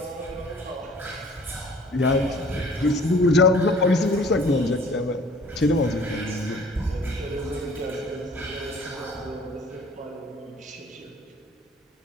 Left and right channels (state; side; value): normal; both; correlation 0.52